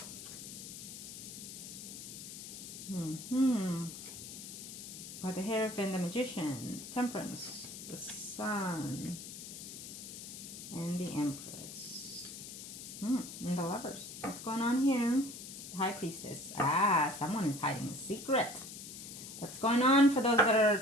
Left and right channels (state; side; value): noise; left; hiss, 11 dB below the sound